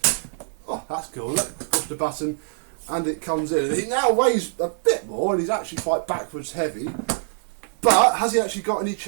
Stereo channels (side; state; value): left; silent; digital silence